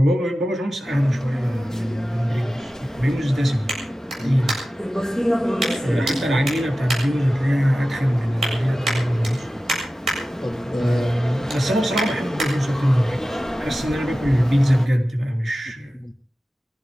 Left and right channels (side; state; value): both; normal; correlation 0.95